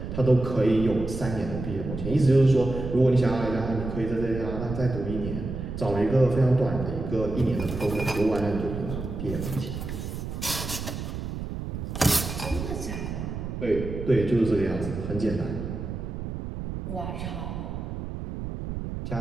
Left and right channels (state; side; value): noise; right; rumble, 6 dB below the sound